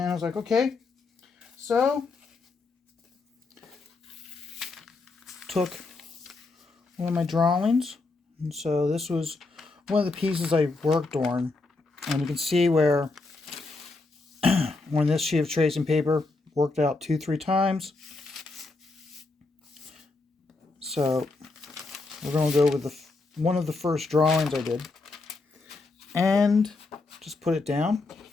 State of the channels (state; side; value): quieter; right; 3.5 dB